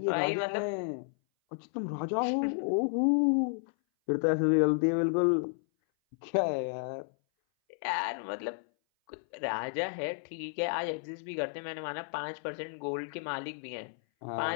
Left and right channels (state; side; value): silent; right; 57 dB below the other